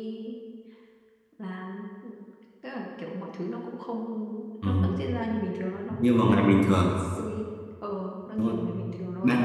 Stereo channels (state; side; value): identical; both; correlation 1.00